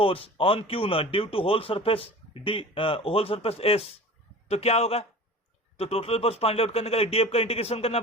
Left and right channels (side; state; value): both; normal; correlation 0.39